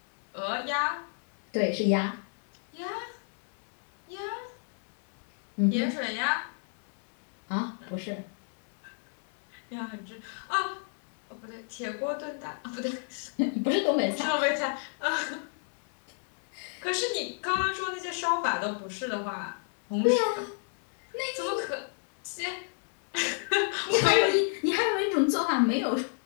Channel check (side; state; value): right; silent; 56 dB below the other